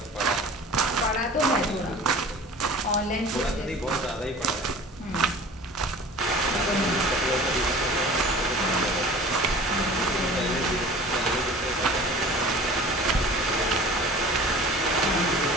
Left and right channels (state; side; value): normal; both; correlation 0.42